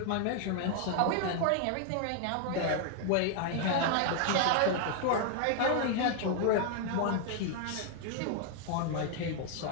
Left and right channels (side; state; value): both; different; correlation 0.00